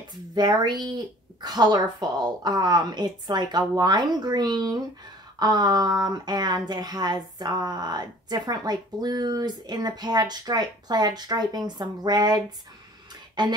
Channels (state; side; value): normal; both; correlation 0.50